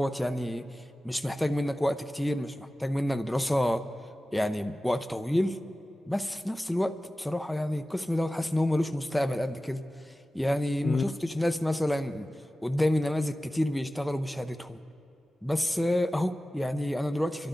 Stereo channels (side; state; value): both; normal; correlation 0.96